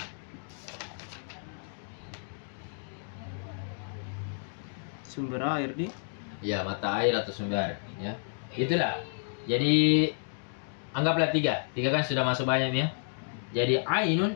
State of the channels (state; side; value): silent; right; digital silence